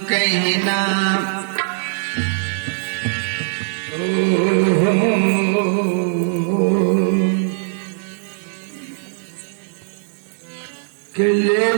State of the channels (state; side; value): silent; left; 66 dB below the other